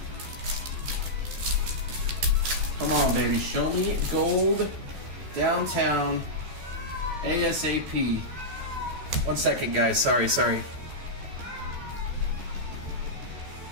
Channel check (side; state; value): left; late; 14 ms